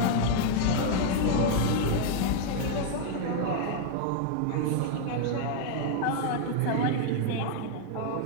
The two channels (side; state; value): both; different; correlation 0.00